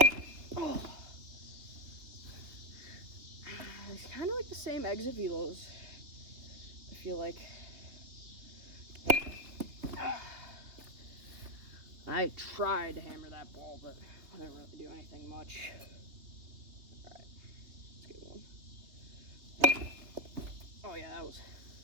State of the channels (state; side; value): late; left; 3.3 ms